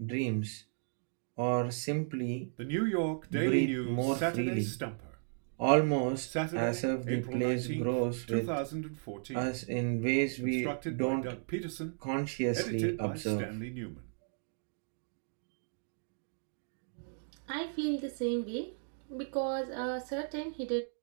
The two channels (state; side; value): silent; left; digital silence